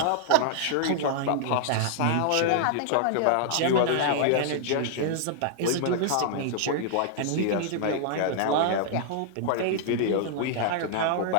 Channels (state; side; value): different; both; correlation -0.01